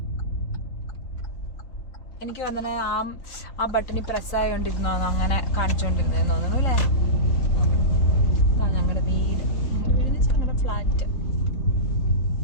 എനിക്ക് വന്നെ ആ ബട്ടണി പ്രസ് ആയോണ്ടിരുന്നോ, അങ്ങനെ കാണിച്ചോണ്ടിരുന്നേന്ന് തോന്നുന്നു അല്ലേ? ഞങ്ങളുടെ വീട് ഫ്ലാറ്റ്.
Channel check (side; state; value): right; late; 3.9 ms